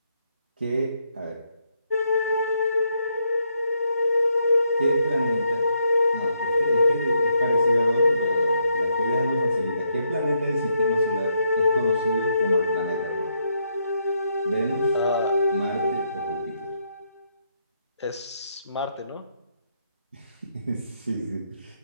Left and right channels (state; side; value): inverted; both; correlation -0.77